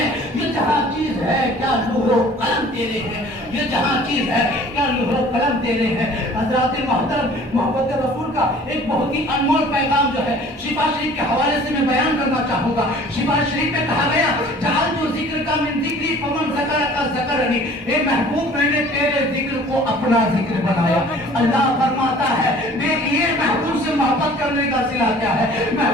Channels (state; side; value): normal; both; correlation 0.49